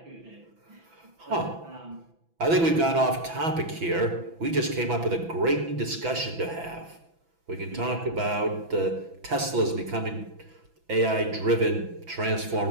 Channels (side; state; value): left; late; 6.0 ms